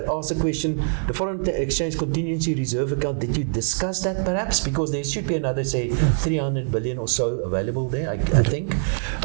ask the question, the foreign exchange contingency reserve account, did you discuss that perhaps? Because there should be another, say, 300 billion or so available there, I think.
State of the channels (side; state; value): left; silent; digital silence